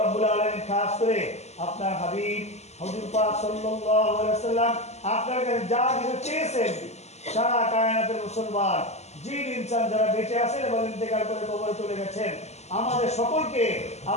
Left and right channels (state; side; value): late; right; 0.32 ms